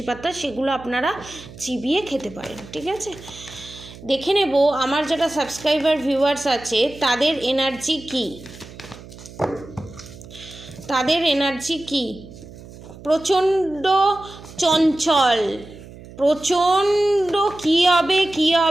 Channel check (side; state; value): right; noise; hum, 17 dB below the sound